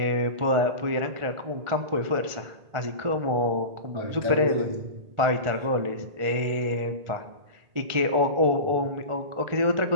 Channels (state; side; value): late; left; 1.4 ms